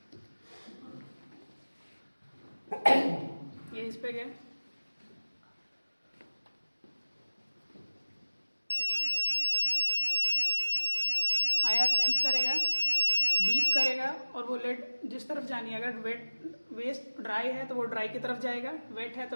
ये इस पे गया, आईआर सेंस करेगा, बीप करेगा और वो लिड जिस तरफ जानी है, अगर वेस्ट ड्राई है तो वो ड्राई की तरफ जाएगा, वेट है तो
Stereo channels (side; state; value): both; inverted; correlation -1.00